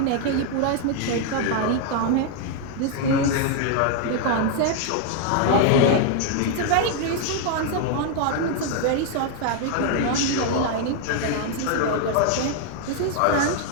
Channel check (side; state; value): both; different; correlation 0.00